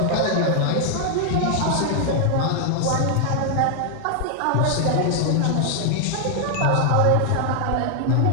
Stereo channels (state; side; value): different; both; correlation 0.00